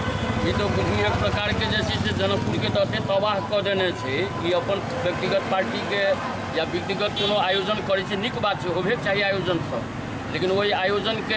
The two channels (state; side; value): identical; both; correlation 1.00